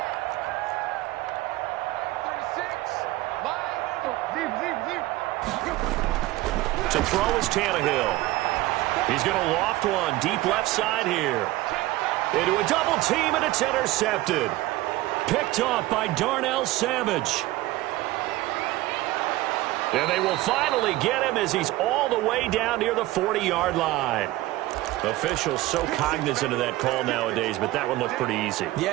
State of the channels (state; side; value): quieter; left; 17.8 dB